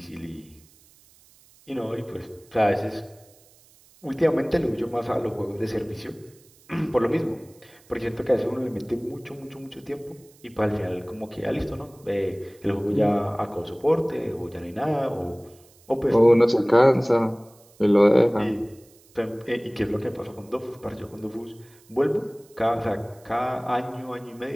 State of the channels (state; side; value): noise; right; hiss, 28 dB below the sound